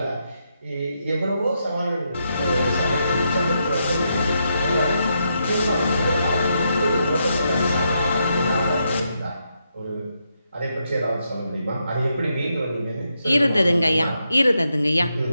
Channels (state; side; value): inverted; both; correlation -0.81